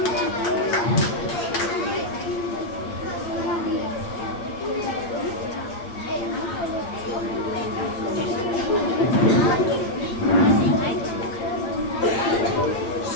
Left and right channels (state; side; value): late; right; 8.7 ms